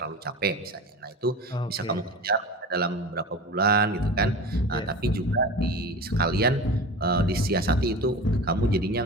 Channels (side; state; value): both; normal; correlation 0.32